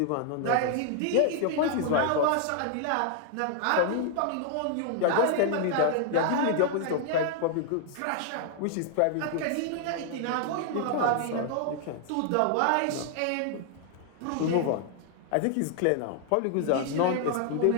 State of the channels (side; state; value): both; different; correlation 0.00